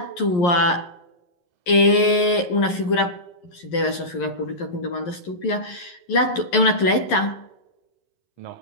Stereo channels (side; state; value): right; late; 11 ms